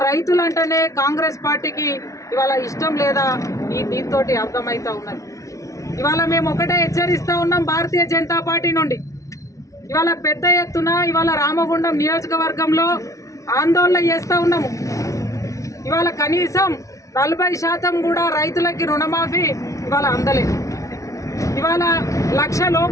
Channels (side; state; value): right; late; 0.16 ms